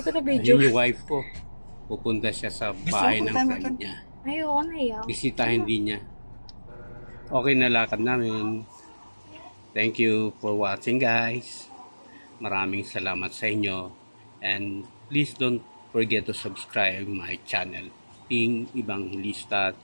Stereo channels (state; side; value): inverted; both; correlation -1.00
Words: na video. Ayun yung wife ko. Pupunta siya sa bahay ng friend niya. Ayoko na yaw. Bisitahin din niya. Okay na lakad namin. Thank you for watching, guys. Maraming salamat sa inyo. And please don't forget to subscribe my channel, Ping Evangelista